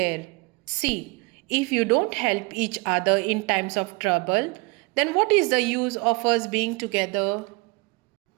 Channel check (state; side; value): quieter; left; 26.4 dB